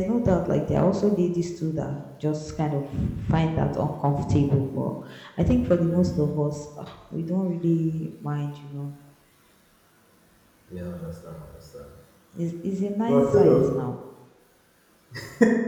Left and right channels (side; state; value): both; identical; correlation 1.00